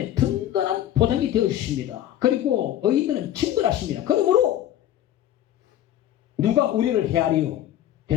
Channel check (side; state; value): right; quieter; 12.1 dB